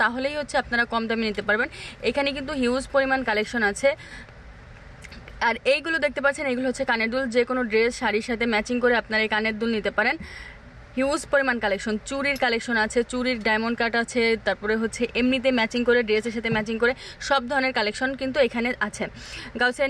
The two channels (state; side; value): identical; both; correlation 1.00